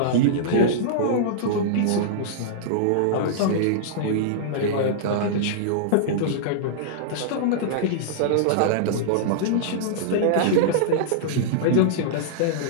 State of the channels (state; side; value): different; both; correlation -0.02